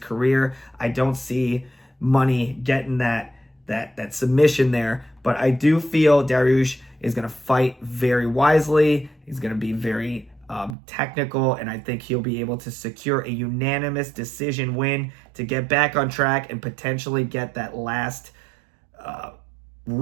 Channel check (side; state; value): left; drops out; at 10.8 s